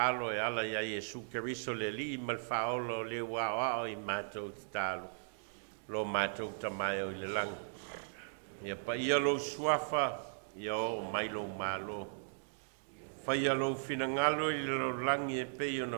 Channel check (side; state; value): left; silent; digital silence